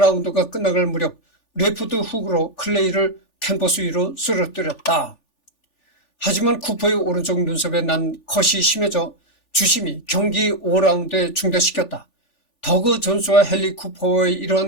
끝나갈 무렵 레프트 훅으로 클레이를 캔버스 위로 쓰러뜨렸다. 하지만 쿠퍼의 오른쪽 눈썹에 난 컷이 심해져 주심이 경기 5라운드에 중단시켰다. 더그 존스와 헨리 쿠퍼의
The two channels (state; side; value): late; right; 3.4 ms